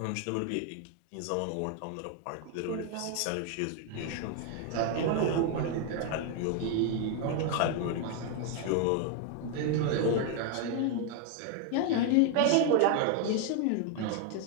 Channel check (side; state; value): both; different; correlation 0.01